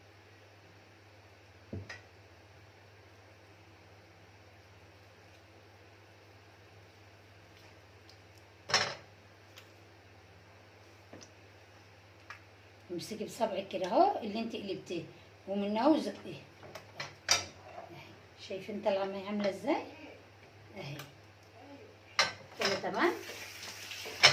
امسكي بصبعك كده اهو اللي انت قلبتيه ومن اهو زقيه اهي. شايفين طالعه معايا عامله ازاي اهي كده؟ تمام.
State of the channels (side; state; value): both; identical; correlation 1.00